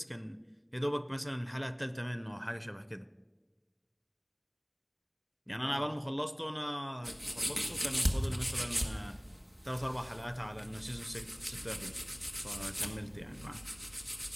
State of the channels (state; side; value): identical; both; correlation 1.00